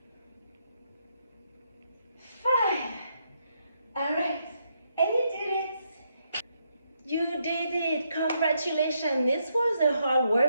5. All right, and you did it. You did it. Congratulations. This was a hard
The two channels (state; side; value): inverted; both; correlation -0.77